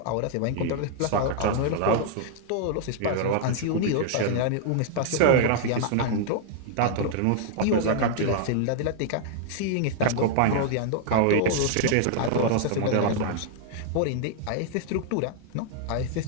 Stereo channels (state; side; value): different; both; correlation -0.01